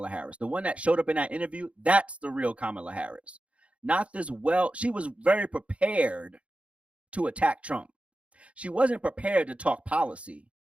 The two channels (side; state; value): left; late; 0.062 ms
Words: Harris. The one that showed up in that interview, that's the real Kamala Harris. Not this she was very prepared to attack Trump. She wasn't prepared to talk policy.